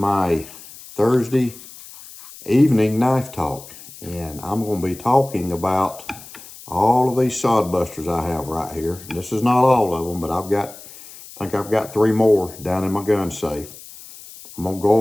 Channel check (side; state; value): left; noise; hiss, 17 dB below the sound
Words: Thursday evening knife talk, and I'm going to be talking about all of these Sodbusters I have right here. And this is not all of them, but I think I've got 3 more down in my gun safe. I'm going to